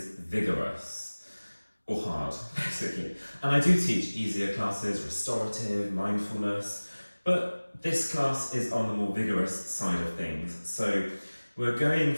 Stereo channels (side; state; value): both; inverted; correlation -1.00